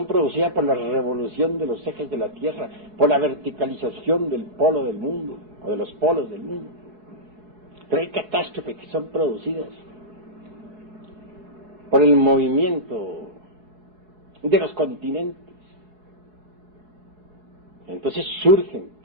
producidas por la revolución de los ejes de la Tierra, por la verticalización del polo del mundo, o de los polos del mundo? Pero hay catástrofes que son producidas por el movimiento de los continentes. Entonces surgen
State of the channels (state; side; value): late; left; 4.7 ms